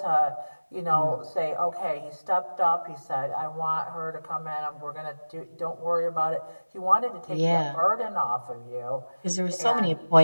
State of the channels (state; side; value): inverted; both; correlation -1.00